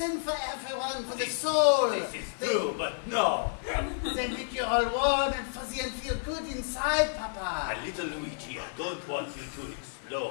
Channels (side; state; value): right; silent; digital silence